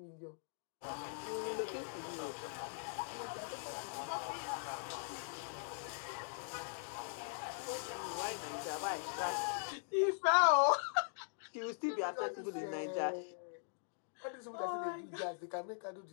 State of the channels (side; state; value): right; silent; digital silence